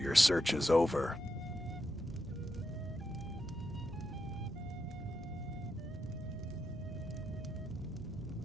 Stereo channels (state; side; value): normal; both; correlation 0.84